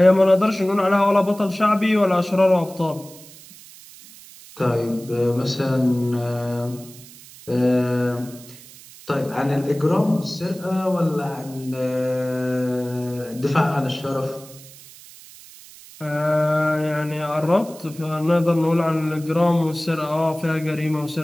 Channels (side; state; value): right; noise; hiss, 20 dB below the sound